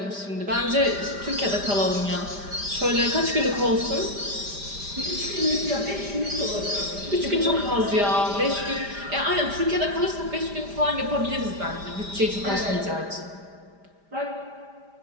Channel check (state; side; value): late; left; 5.0 ms